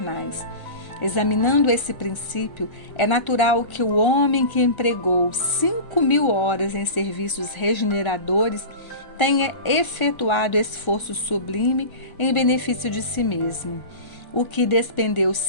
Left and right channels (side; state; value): right; late; 1.0 ms